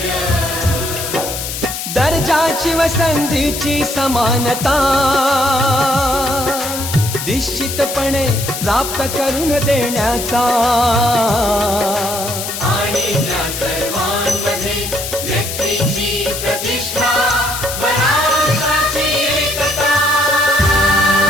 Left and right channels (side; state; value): left; noise; hiss, 6 dB below the sound